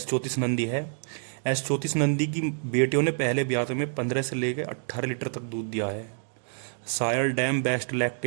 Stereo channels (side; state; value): left; silent; digital silence